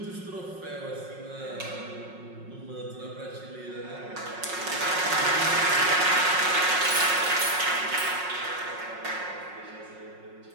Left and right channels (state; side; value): late; left; 5.5 ms